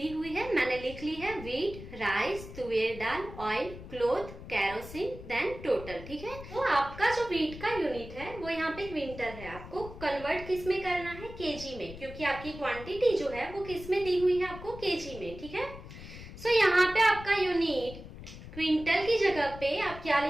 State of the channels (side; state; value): left; noise; rumble, 13 dB below the sound